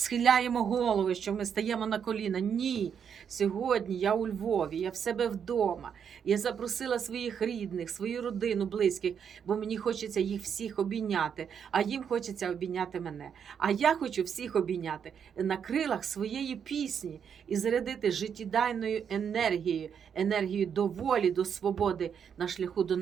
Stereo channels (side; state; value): left; quieter; 7.6 dB